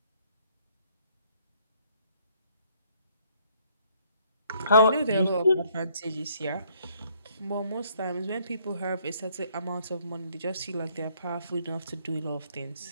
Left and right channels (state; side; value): inverted; both; correlation -0.65